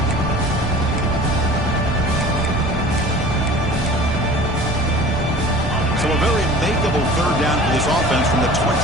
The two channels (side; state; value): both; normal; correlation 0.43